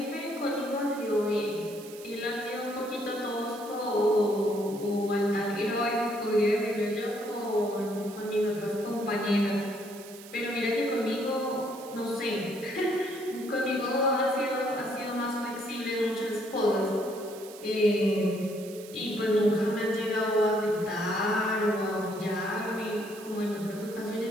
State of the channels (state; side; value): noise; right; hiss, 17 dB below the sound